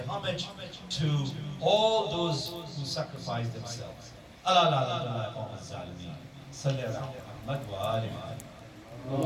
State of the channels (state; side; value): identical; both; correlation 1.00